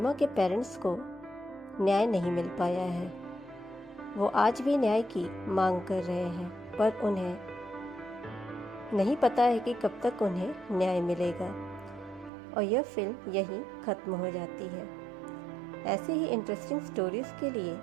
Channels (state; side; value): drops out; left; at 12.3 s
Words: के पेरेंट्स को न्याय नहीं मिल पाया है। वो आज भी न्याय की मांग कर रहे हैं, पर उन्हें नहीं पता है कि कब तक उन्हें न्याय मिलेगा। और यह फिल्म यहीं ख़त्म हो जाती है। ऐसे ही इंटरेस्टिंग स्टोरीज़ के लिए